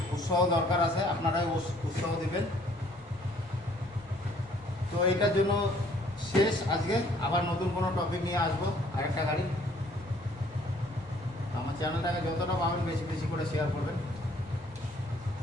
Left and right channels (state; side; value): normal; both; correlation 0.60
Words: উৎসাহ দরকার আছে, আপনারাই উৎসাহ দেবেন। তো এটার জন্য শেষ আজকে, আবার নতুন কোনো টপিক নিয়ে আসবো, আরেকটা গাড়ি। আমার চ্যানেলটাকে যতটা পাবেন বেশি বেশি করে শেয়ার করবেন,